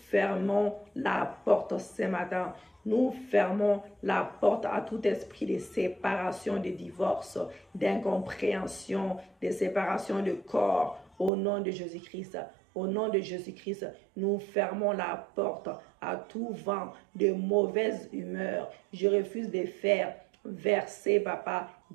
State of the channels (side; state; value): left; drops out; at 11.3 s